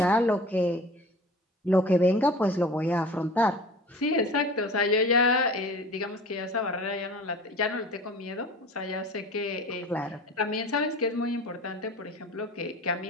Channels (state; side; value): normal; both; correlation 0.40